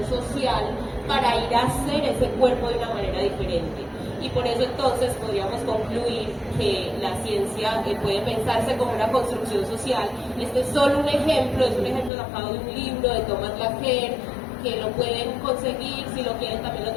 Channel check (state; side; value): drops out; right; at 12.1 s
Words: social para ir a hacer ese cuerpo de una manera diferente. Y por eso entonces podríamos concluir que la ciencia puede pensarse como una construcción social. Este es solo un ejemplo, es un ejemplo sacado de un libro de Thomas Laqueur, que lo pueden conseguir, si lo quieren también lo